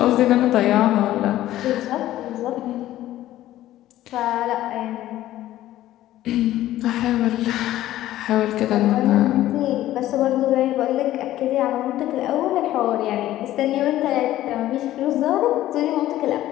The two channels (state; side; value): quieter; right; 14.2 dB